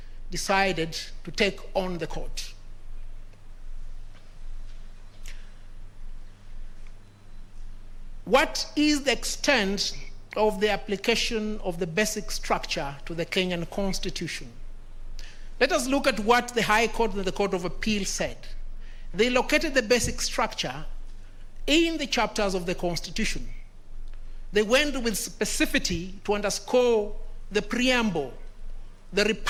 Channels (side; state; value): both; identical; correlation 1.00